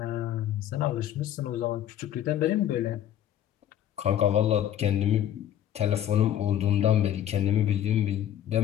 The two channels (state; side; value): quieter; right; 11.0 dB